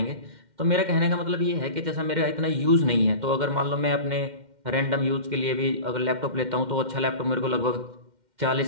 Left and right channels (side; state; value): left; late; 2.1 ms